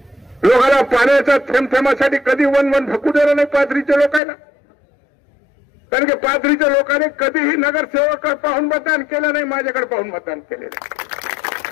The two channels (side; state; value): right; drops out; at 4.2 s